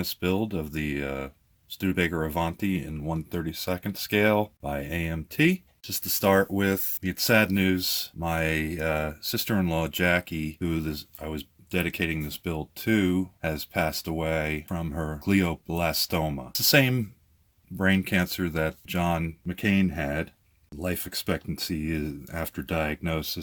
build of the Studebaker Avanti in 1/32nd scale by AMT. Just to start with, it's sad news. My sister-in-law, Jackie, I was dedicating this build to, has passed away from her glioblastoma. It's the same brain cancer that John McCain had. Life expectancy after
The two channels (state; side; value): identical; both; correlation 1.00